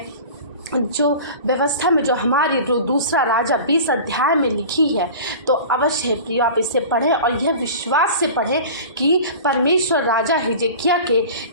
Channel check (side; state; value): both; inverted; correlation -0.37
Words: जो व्यवस्था में जो हमारी जो दूसरा राजा 20 अध्याय में लिखी है, तो अवश्य है प्रियो आप इसे पढ़ें और यह विश्वास से पढ़ें कि परमेश्वर राजा हिजकिय्याह के